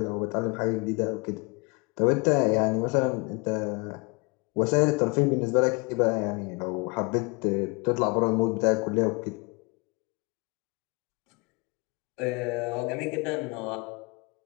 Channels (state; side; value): quieter; right; 29.8 dB